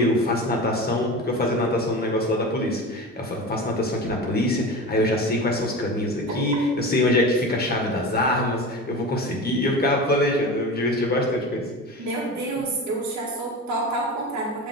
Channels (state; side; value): normal; both; correlation 0.29